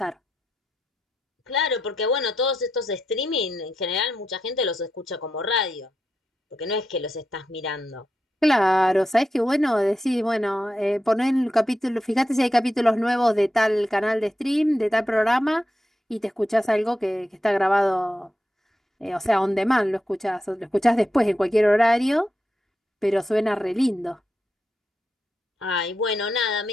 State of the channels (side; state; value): both; normal; correlation 0.87